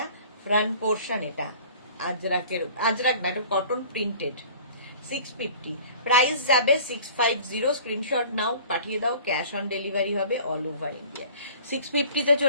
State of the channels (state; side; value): inverted; both; correlation -0.47